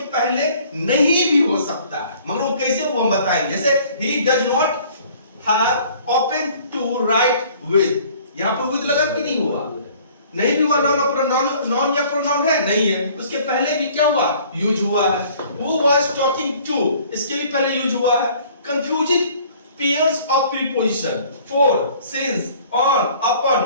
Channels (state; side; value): inverted; both; correlation -0.54